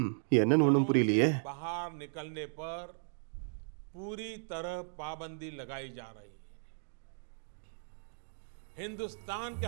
என்னன்னு ஒன்றும் புரியலையே. बाहर निकलने पर पूरी तरह पाबंदी लगाई जा रही है। हिंदुस्तान के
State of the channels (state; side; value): silent; left; digital silence